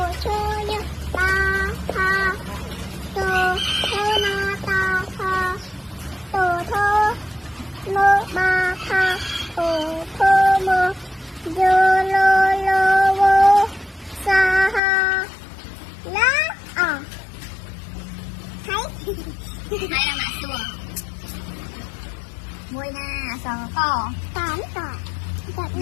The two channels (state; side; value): drops out; right; at 14.8 s